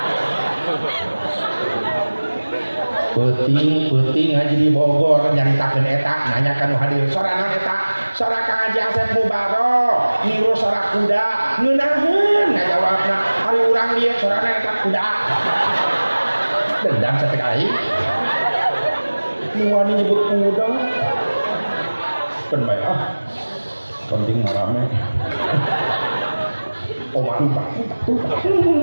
peuting ngaji di Bogor nyaritakeun eta nanyakan hadir sorangan eta sora Kang Haji Asep Mubaro niru sora kuda ngeunaheun ngajawabna ari urang dieu sorana eta kuda dendam satek aing nu wani nyebut kuda penbaik penting marame Oma tumpak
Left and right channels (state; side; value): inverted; both; correlation -1.00